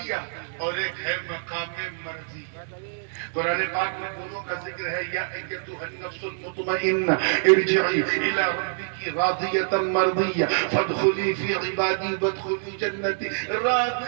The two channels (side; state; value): left; silent; digital silence